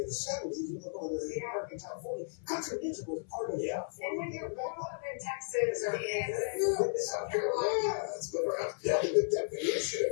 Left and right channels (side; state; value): right; silent; 55 dB below the other